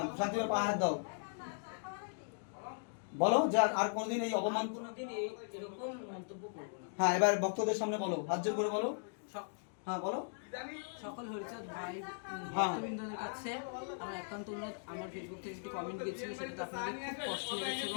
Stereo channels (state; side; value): silent; right; digital silence